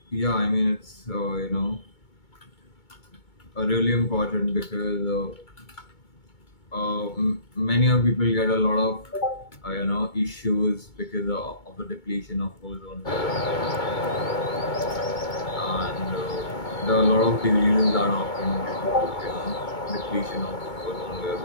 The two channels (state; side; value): late; right; 2.2 ms